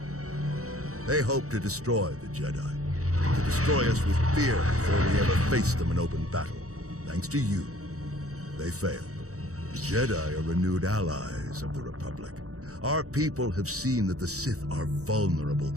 They hoped to destroy the Jedi, to destroy us with fear before we ever faced them in open battle. Thanks to you, they failed. The Jedi are renewed allies of the Republic. Our people have seen that the Sith are vulnerable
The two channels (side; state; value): left; late; 0.65 ms